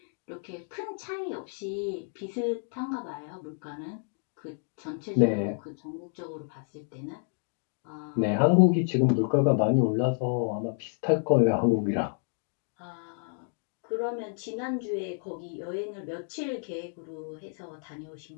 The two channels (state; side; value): silent; right; 56 dB below the other